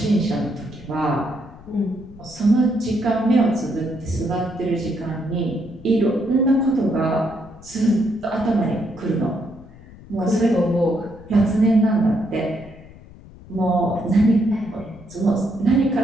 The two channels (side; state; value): left; noise; rumble, 20 dB below the sound